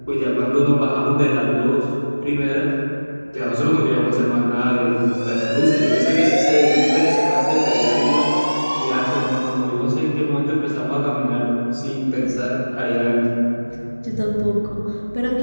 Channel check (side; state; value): both; inverted; correlation -1.00